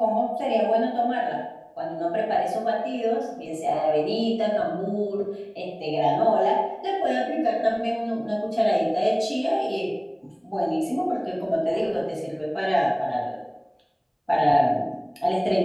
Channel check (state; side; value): identical; both; correlation 1.00